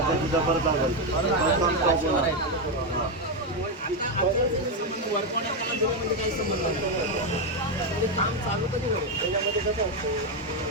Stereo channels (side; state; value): both; normal; correlation 0.06